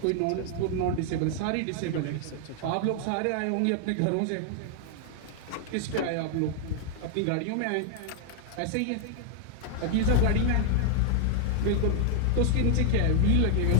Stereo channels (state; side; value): different; both; correlation 0.00